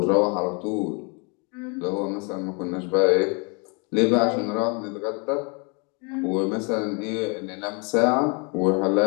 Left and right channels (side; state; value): right; quieter; 33.6 dB